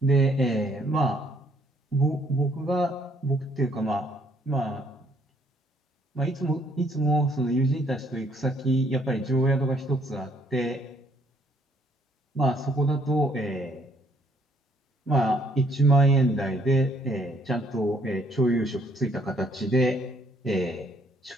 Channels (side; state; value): both; normal; correlation 0.66